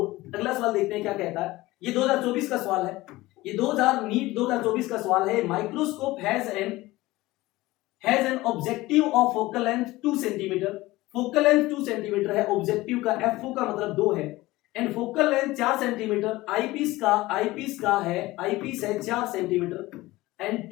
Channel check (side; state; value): right; quieter; 18.9 dB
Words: अगला सवाल देखते हैं क्या कहता है। ये 2024 का सवाल है, ये 2024 का सवाल है। Microscope has an objective of focal length 2 centimetre, focal length 2 centimetre है, ऑब्जेक्टिव का FO का मतलब 2 है, and focal length 4 centimetre, eyepiece है 4 सेंटीमीटर, एंड